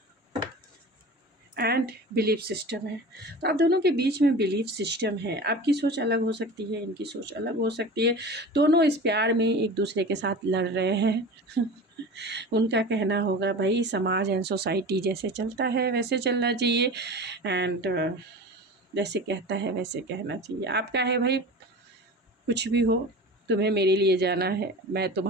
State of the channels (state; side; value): normal; both; correlation 0.34